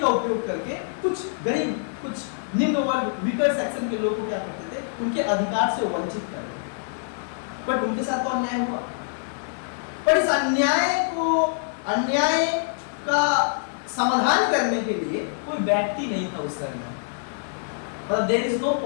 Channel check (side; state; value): right; silent; digital silence